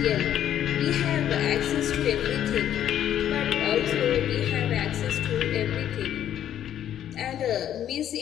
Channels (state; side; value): quieter; right; 10.7 dB